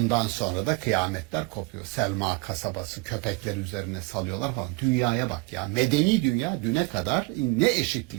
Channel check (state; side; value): quieter; left; 26.1 dB